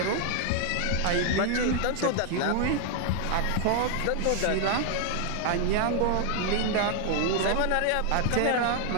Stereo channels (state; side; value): different; both; correlation 0.00